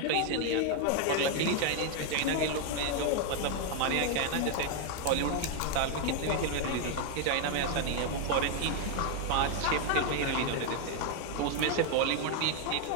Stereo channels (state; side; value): different; both; correlation 0.01